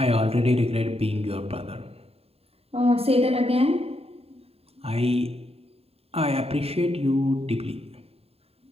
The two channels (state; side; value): late; left; 0.29 ms